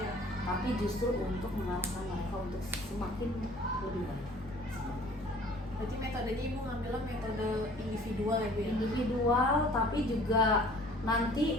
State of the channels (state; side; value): normal; both; correlation 0.51